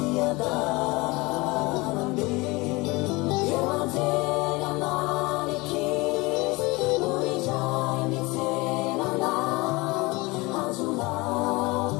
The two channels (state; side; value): quieter; right; 23.9 dB